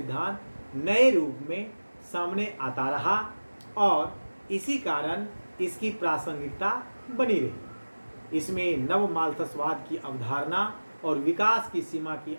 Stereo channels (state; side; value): inverted; both; correlation -1.00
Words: नए रूप में सामने आता रहा और इसी कारण इसकी प्रासंगिकता बनी रही। इसमें नव माल्थसवाद की अवधारणा और विकास की सीमा की